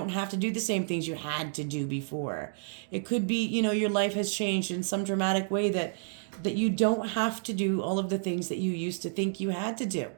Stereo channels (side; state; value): left; silent; digital silence